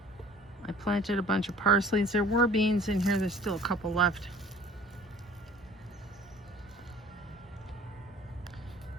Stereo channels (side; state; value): both; normal; correlation 0.49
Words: I planted a bunch of parsleys. There were beans in here. There's still a couple left.